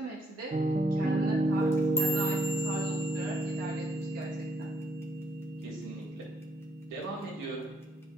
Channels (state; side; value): normal; both; correlation 0.72